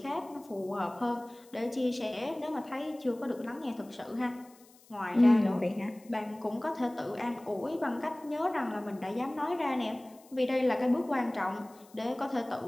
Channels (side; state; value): left; noise; hiss, 26 dB below the sound